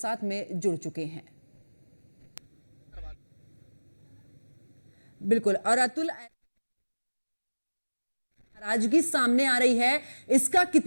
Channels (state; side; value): inverted; both; correlation -1.00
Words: में जुड़ चुके हैं। बिल्कुल, और अतुल, नाराजगी सामने आ रही है, इसका